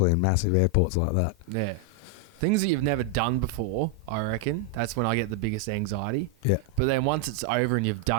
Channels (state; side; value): normal; both; correlation 0.01